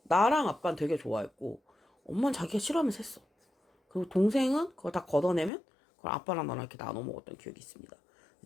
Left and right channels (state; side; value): drops out; right; at 5.5 s